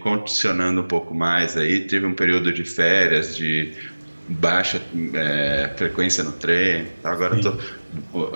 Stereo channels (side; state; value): both; inverted; correlation -1.00